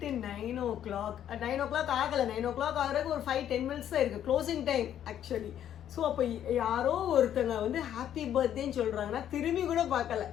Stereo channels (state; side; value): quieter; right; 10.4 dB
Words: 9 o'clock ஆகலை, 9 o'clock ஆகிறதுக்கு ஒரு 5-10 minutes தான் இருக்குது க்ளோசிங் டைம் ஆக்சுவலி. ஸோ அப்போ யாரோ ஒருத்தங்க வந்து ஹாப்பி பர்த்டேன்னு சொல்கிறாங்கன்னா திரும்பி கூட பார்க்கல